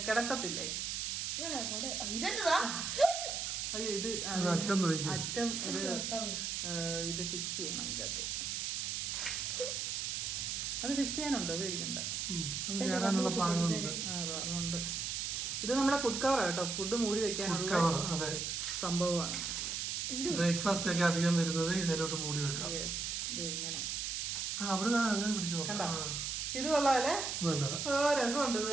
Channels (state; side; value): noise; right; hiss, 2 dB below the sound